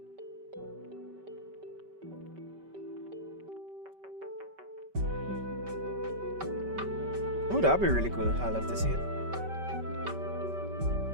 Oh, that'd be really cool. I'd love to see it.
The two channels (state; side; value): late; left; 5.2 ms